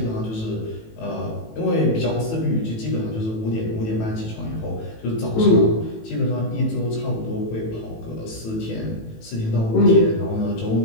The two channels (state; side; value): late; right; 18 ms